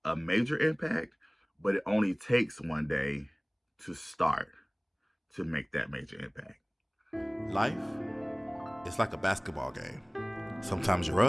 a major impact, but it only takes one day to start to make that major impact. Life is like a basketball game. Sometimes you're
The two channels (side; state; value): both; identical; correlation 1.00